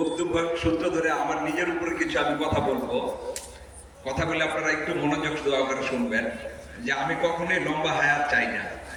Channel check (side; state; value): both; identical; correlation 1.00